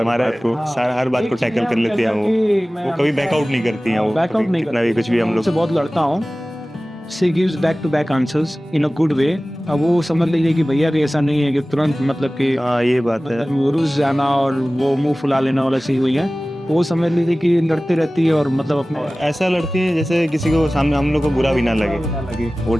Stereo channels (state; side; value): normal; both; correlation 0.97